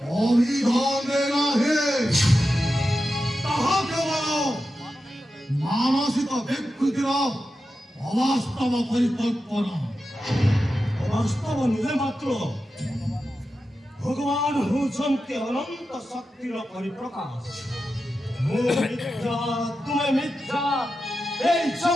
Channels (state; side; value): normal; both; correlation 0.91